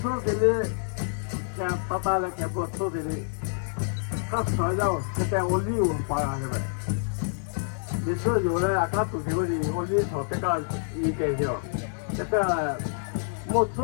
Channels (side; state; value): right; silent; digital silence